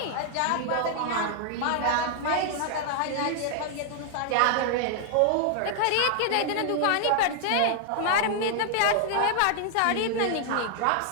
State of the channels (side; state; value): both; different; correlation 0.00